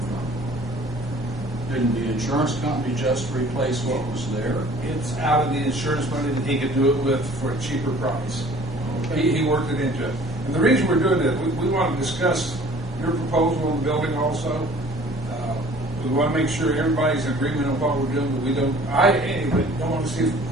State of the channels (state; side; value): normal; both; correlation 0.51